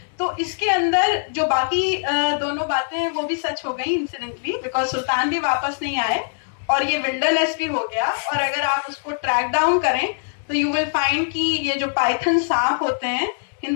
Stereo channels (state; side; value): silent; right; digital silence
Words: तो इसके अंदर जो बाकी दोनों बातें हैं वो भी सच हो गई इंसिडेंटली बिकॉज सुल्तान भी वापस नहीं आए और ये विल्डरनेस भी हो गया. और अगर आप उसको ट्रैक डाउन करें तो यू विल फाइंड कि ये जो पाइथन सांप होते हैं